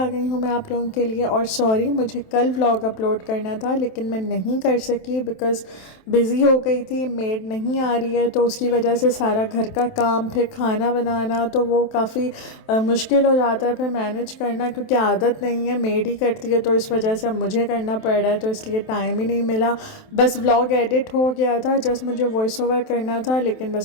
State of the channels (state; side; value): late; right; 27 ms